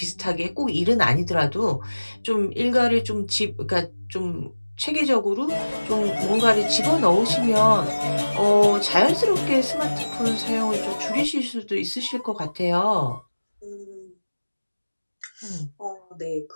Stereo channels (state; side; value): inverted; both; correlation -1.00